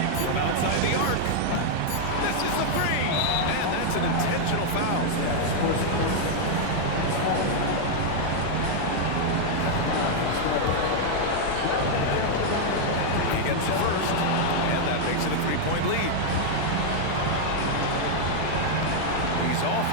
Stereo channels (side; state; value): both; different; correlation 0.00